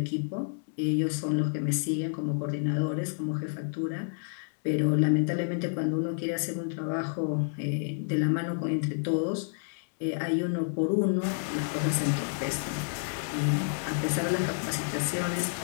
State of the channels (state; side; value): silent; right; digital silence